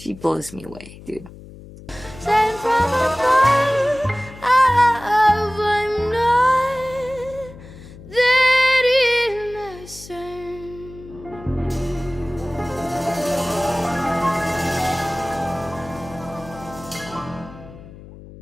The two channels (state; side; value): noise; left; hum, 17 dB below the sound